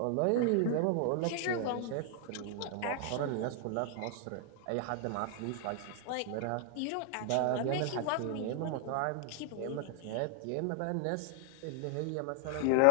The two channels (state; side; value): different; both; correlation 0.00